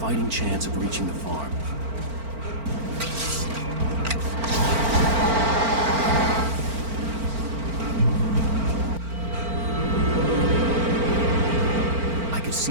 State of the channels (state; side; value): late; left; 4.4 ms